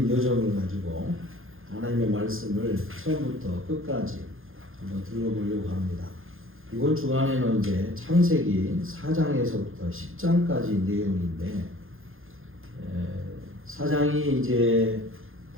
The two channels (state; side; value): late; left; 0.60 ms